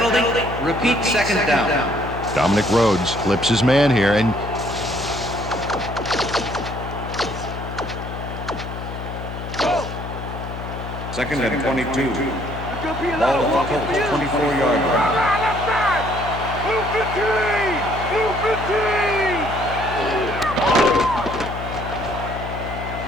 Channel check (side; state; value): left; noise; hum, 8 dB below the sound